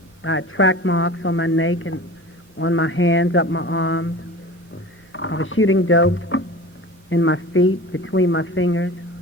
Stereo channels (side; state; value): both; normal; correlation 0.37